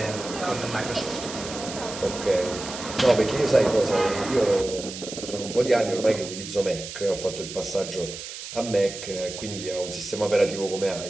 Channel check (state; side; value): noise; right; hiss, 10 dB below the sound